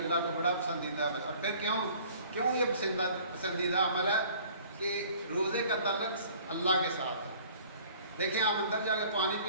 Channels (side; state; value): both; inverted; correlation -0.52